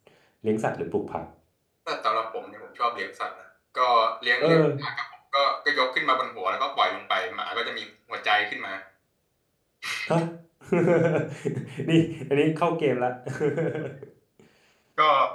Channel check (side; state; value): both; identical; correlation 1.00